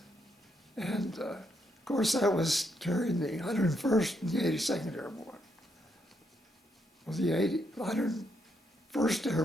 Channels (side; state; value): both; normal; correlation 0.77